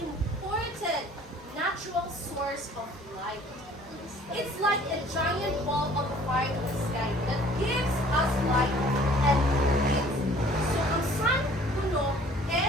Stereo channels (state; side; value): normal; both; correlation 0.53